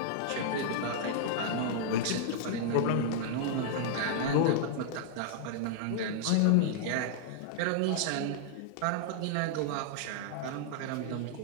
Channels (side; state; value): both; different; correlation -0.01